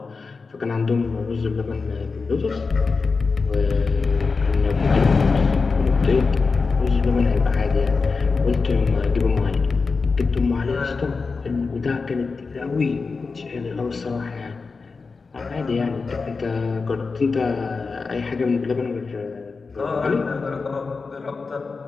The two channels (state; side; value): quieter; right; 4.5 dB